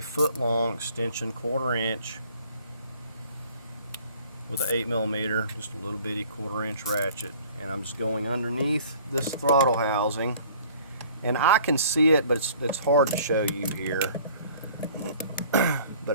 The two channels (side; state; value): both; inverted; correlation -0.52